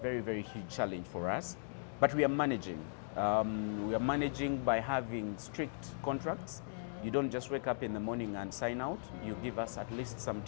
very huge challenge for us, but we are managing. We are managing by having strict contracts. You don't just wake up in the morning and sign out. You give us at least some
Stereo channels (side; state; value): right; silent; digital silence